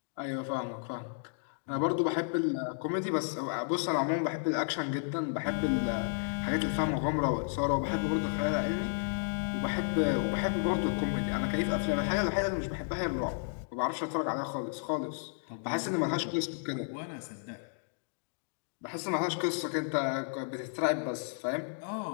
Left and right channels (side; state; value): right; silent; digital silence